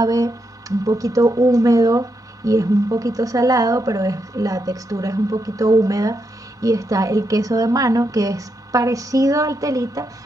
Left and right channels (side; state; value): both; normal; correlation 0.82